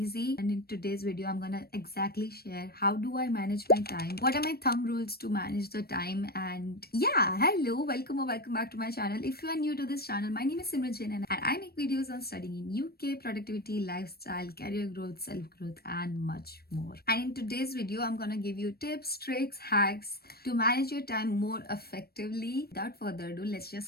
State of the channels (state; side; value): late; right; 0.45 ms